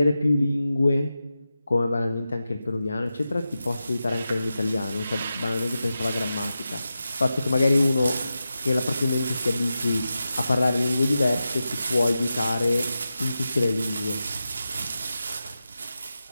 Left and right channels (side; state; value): both; inverted; correlation -0.92